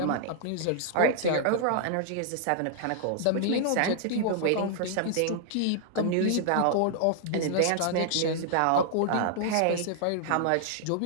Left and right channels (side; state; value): both; different; correlation -0.01